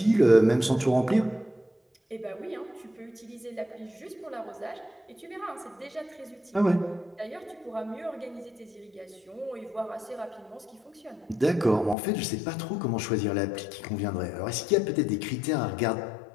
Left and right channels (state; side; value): drops out; right; at 12.0 s